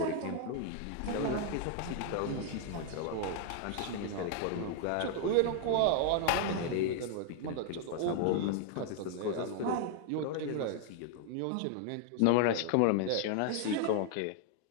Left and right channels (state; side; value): different; both; correlation 0.00